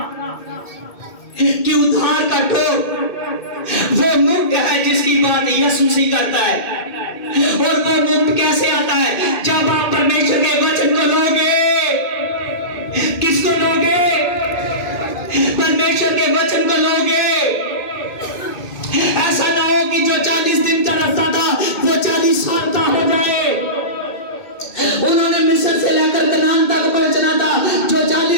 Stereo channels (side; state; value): right; late; 2.2 ms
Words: कि उद्धार का टोप वो मुक्त है जिसकी बात यीशु मसीह करता है। और वो मुक्त कैसे आता है? जब आप परमेश्वर के वचन को लोगे। किसको लोगे? परमेश्वर के वचन को लोगे। ऐसा ना हो कि जो 40 दिन का रास्ता था वो 40 साल का हो जाए। उन्होंने मिस्र से लेकर कनान तक पहुंचना था, जो